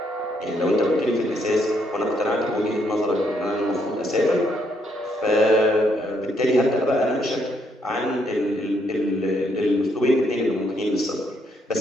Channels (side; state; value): both; normal; correlation 0.73